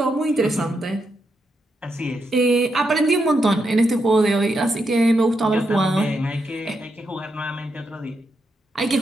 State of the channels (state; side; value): normal; both; correlation 0.83